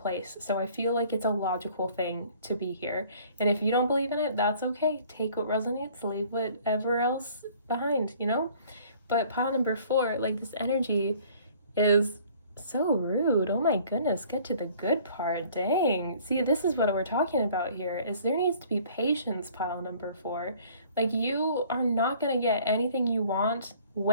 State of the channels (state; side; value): inverted; both; correlation -0.54